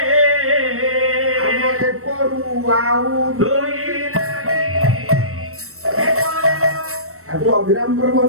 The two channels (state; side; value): late; left; 0.63 ms